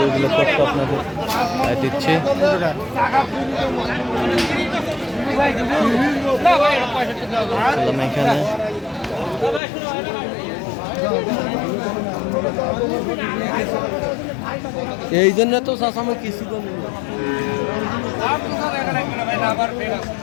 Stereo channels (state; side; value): drops out; right; at 9.6 s